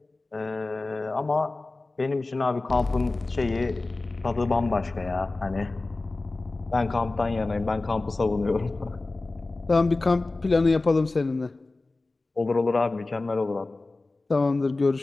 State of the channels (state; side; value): quieter; right; 3.2 dB